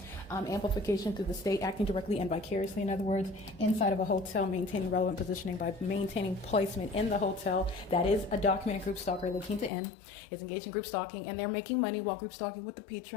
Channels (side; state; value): right; drops out; at 9.7 s